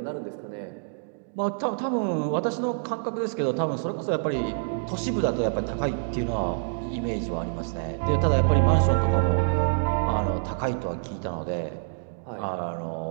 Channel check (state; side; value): silent; left; digital silence